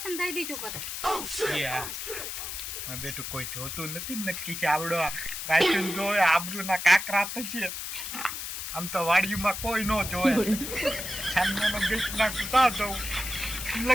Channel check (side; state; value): left; noise; hiss, 6 dB below the sound